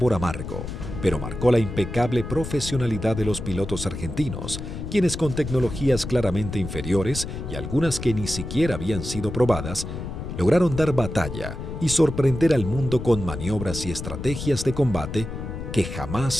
amargo, pero marcó la impecable profesionalidad de los pilotos argentinos, quienes con tecnologías claramente inferiores y algunas que ni siquiera habían sido probadas, lograron dar batalla y sorprender al mundo con maniobras y estrategias de combate que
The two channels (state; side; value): noise; left; rumble, 7 dB below the sound